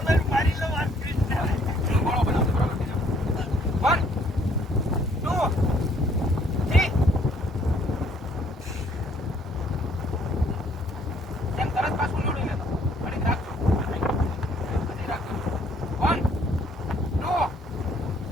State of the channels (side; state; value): both; normal; correlation 0.63